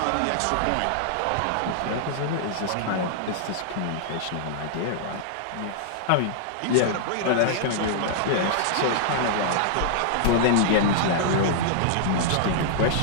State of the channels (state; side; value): different; both; correlation -0.01